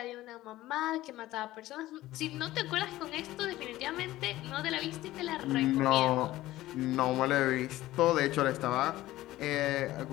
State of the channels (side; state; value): right; quieter; 16.1 dB